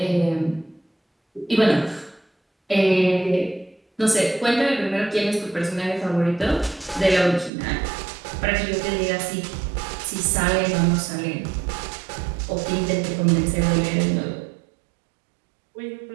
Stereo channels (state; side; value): drops out; left; at 7.5 s